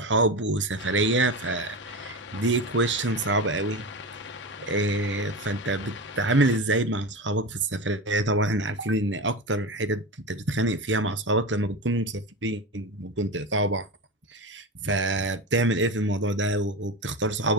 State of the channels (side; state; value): both; normal; correlation 0.23